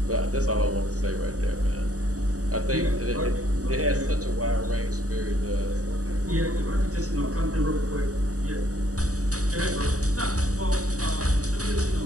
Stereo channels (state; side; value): late; left; 0.66 ms